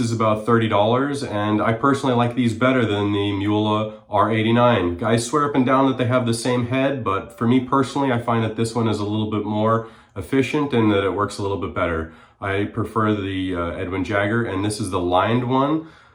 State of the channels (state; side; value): identical; both; correlation 1.00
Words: about $30, and I personally like these better than the Mueller R89. Guys swear up and down that they have the same head, but for me personally, I find that this one is a little bit more efficient and that it works a little bit better. I prefer the Edwin Jagger, and this is the lined one.